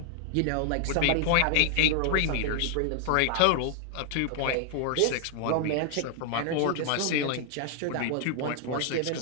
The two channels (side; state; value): both; different; correlation 0.00